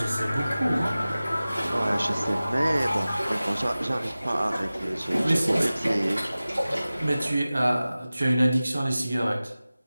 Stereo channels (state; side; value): inverted; both; correlation -0.97